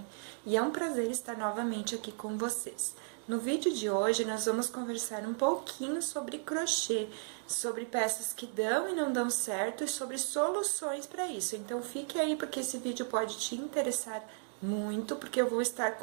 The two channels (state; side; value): silent; left; 55 dB below the other